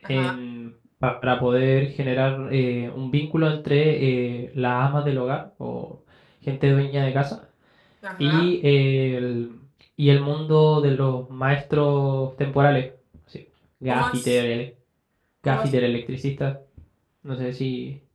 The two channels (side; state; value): both; identical; correlation 1.00